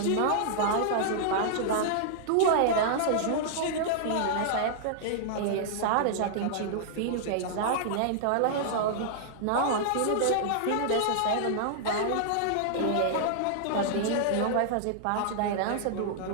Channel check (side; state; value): both; different; correlation -0.01